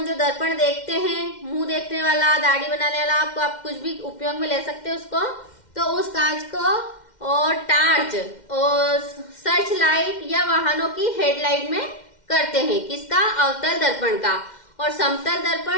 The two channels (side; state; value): right; late; 2.1 ms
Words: जो दर्पण देखते हैं, मुंह देखने वाला, दाढ़ी बनाने वाला, आप कुछ भी उपयोग में ले सकते हैं उसको, तो उस कांच को और टार्च और सर्च लाइट या वाहनों की हेडलाइट में करते हैं। किसका? अवतल दर्पण का। और समतल